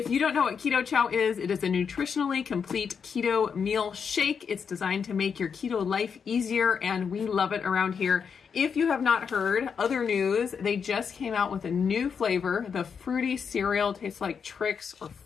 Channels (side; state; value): right; quieter; 6.5 dB